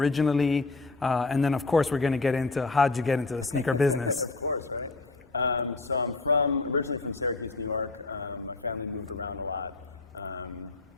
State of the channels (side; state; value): right; quieter; 3.5 dB